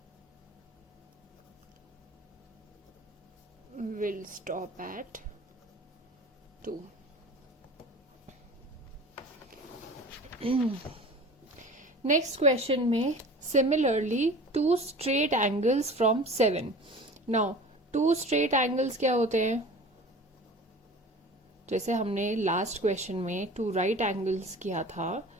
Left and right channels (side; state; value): both; normal; correlation 0.40